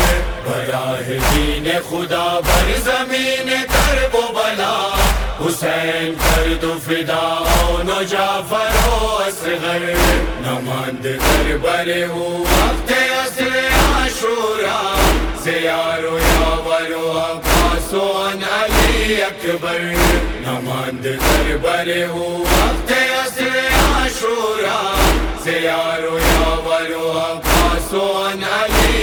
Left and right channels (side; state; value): both; identical; correlation 1.00